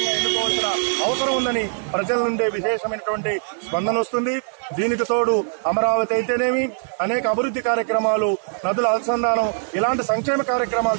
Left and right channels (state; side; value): silent; left; digital silence